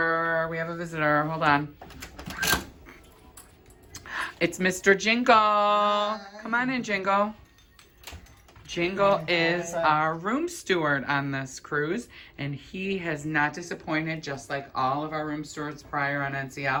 Hold on. It's Mr. Jingle. Come on in, Jingle. Jingle is our room steward on this cruise, and he has not disappointed, just like all of our room stewards prior on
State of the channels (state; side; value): identical; both; correlation 1.00